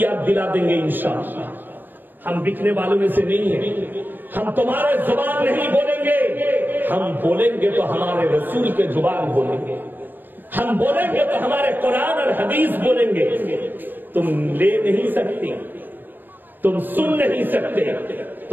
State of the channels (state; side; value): late; left; 0.091 ms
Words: याद दिला देंगे इंशाअल्लाह। हम बिकने वालों में से नहीं है, हम तुम्हारे जुबान नहीं बोलेंगे, हम बोलेंगे तो हमारे रसूल के जुबान बोलेंगे, हम बोलेंगे तो हमारे कुरान और हदीस बोलेंगे। तुम ले नहीं सकती, तुम सुन नहीं सकते,